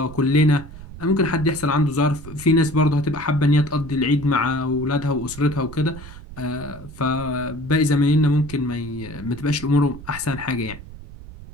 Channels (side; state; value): right; noise; rumble, 15 dB below the sound